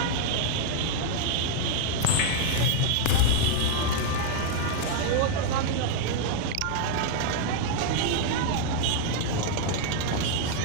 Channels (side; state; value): both; different; correlation -0.01